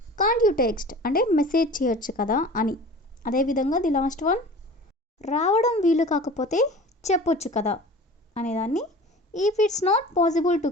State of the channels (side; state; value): both; normal; correlation 0.40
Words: కాంట్ యూ టెక్స్ట్ అంటే మెసేజ్ చేయొచ్చు కదా అని. అదేవిధంగా ది లాస్ట్ వన్, రావడం వీలు కాకపోతే చెప్పొచ్చు కదా అనేదాన్ని if it's not possible to